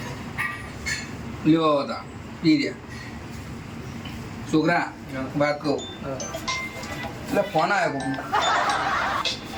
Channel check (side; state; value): both; identical; correlation 1.00